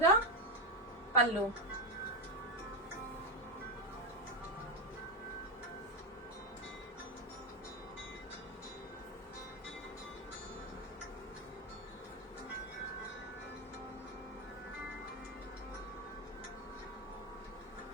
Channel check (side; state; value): both; normal; correlation 0.08